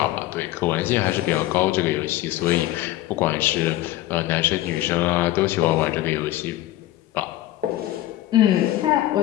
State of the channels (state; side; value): quieter; right; 15.2 dB